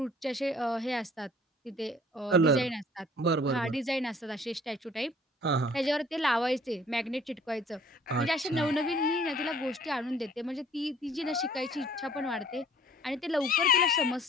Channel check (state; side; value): normal; both; correlation 0.54